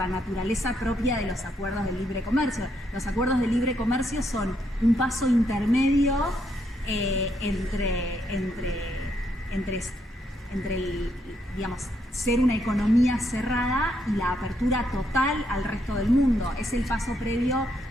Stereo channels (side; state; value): both; normal; correlation 0.76